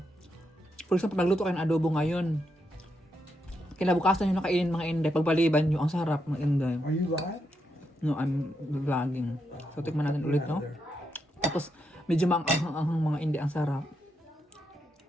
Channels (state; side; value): normal; both; correlation 0.82